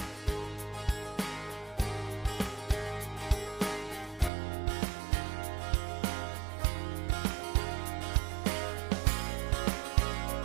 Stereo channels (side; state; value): left; drops out; at 4.3 s